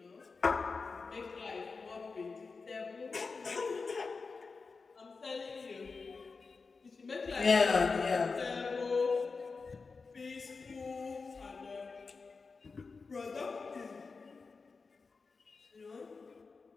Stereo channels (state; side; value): quieter; right; 4.5 dB